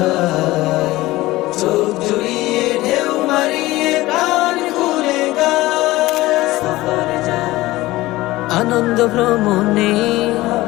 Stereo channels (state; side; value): quieter; right; 18.3 dB